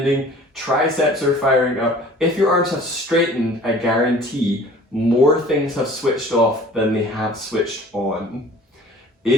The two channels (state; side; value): normal; both; correlation 0.48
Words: triceps are firing up. If your arms have straightened, I guarantee more things have switched off than they have switched on.